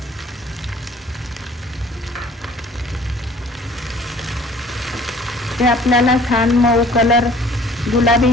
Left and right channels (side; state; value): both; normal; correlation 0.53